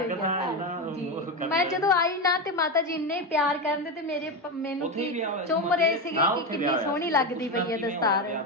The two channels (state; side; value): normal; both; correlation 0.14